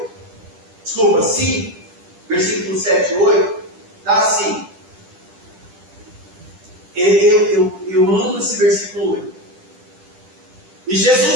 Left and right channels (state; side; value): late; left; 10 ms